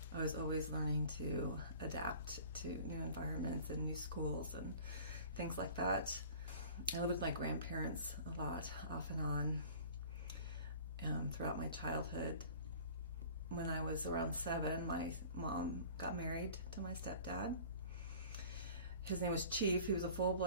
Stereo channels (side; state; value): both; inverted; correlation -0.45